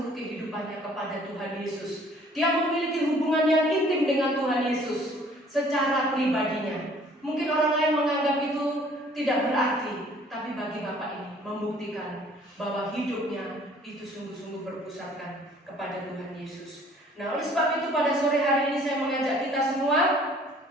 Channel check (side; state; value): both; normal; correlation 0.56